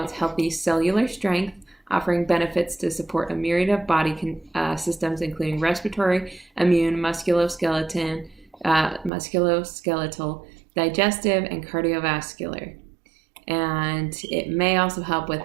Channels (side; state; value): left; drops out; at 9.1 s